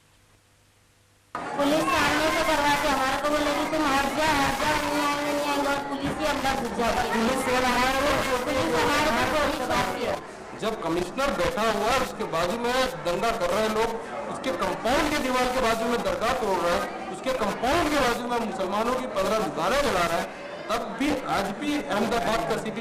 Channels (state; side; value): identical; both; correlation 1.00